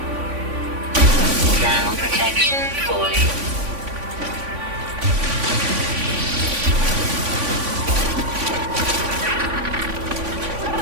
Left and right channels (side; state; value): left; late; 3.5 ms